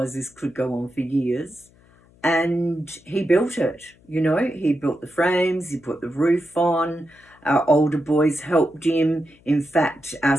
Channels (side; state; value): left; noise; hum, 29 dB below the sound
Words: this could go on for years. And he built it, you know. He built the frames, he put the roof on. Our older boys helped him. In fact, our